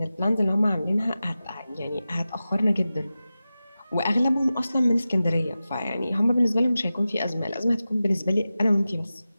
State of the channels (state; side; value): inverted; both; correlation -0.94